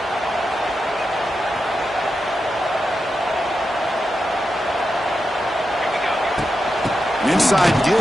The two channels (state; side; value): normal; both; correlation 0.88